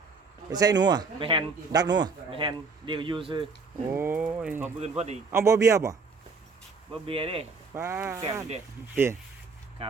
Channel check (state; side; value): quieter; left; 4.5 dB